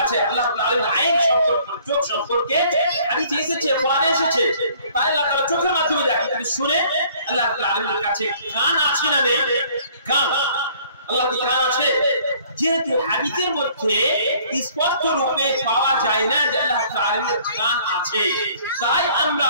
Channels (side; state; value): both; inverted; correlation -0.57